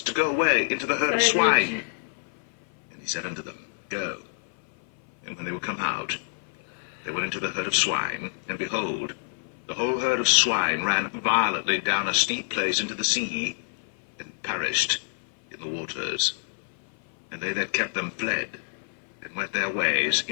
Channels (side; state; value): right; silent; 57 dB below the other